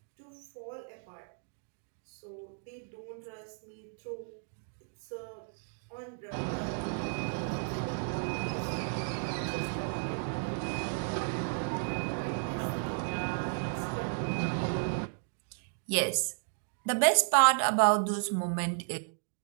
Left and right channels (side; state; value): left; silent; digital silence